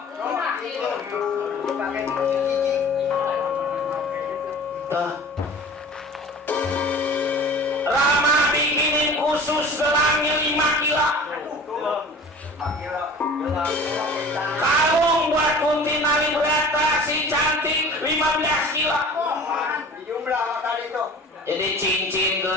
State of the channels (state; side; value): normal; both; correlation 0.42